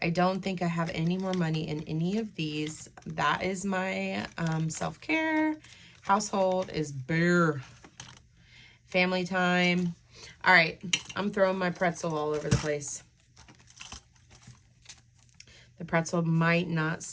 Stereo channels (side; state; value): both; identical; correlation 1.00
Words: I don't think I have any more money in any of these. That is my self-care. Household is bare. Family time. All right, I'm throwing my pretzel all over the place. The pretzel might not